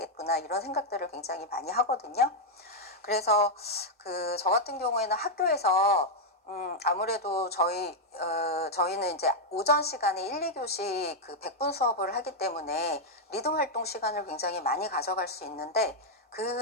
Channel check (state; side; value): normal; both; correlation -0.01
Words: 이런 생각들을 굉장히 많이 하거든요. 그래서 저 같은 경우에는 학교에서 아무래도 저희는 이제 오전 시간에 1, 2교시 100분 수업을 하기 때문에 리듬 활동 시간을 굉장히 많이 가져갈 수 있는데,